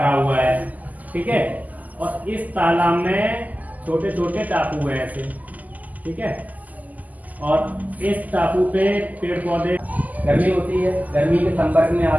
हुआ है। ठीक है, और इस तालाब में छोटे छोटे टापू हैं ऐसे। ठीक है, और इस टापू पे पेड़ पौधे, गर्मी होती है, गर्मी के संपर्क में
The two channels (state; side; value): late; left; 0.079 ms